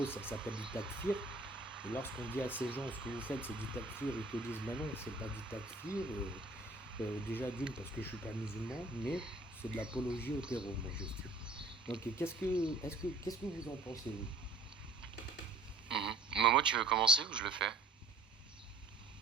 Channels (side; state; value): left; quieter; 3.0 dB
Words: ça s'appelle du takfir, et lorsqu'on dit à ces gens, ce que vous faites, c'est du takfir, ils te disent, bah non, c'est pas du takfir, déjà d'une, parce que je suis pas musulman, mais c'est de l'apologie au terreau, moi j'estime. Donc, qu'est-ce que vous en pensez, vous? Mhm. Momo, tu veux commencer ou je le fais?